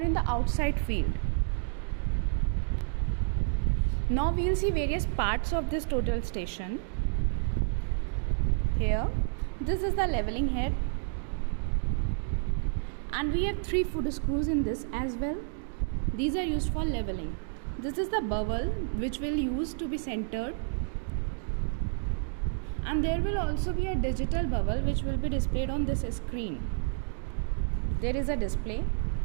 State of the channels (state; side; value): silent; left; digital silence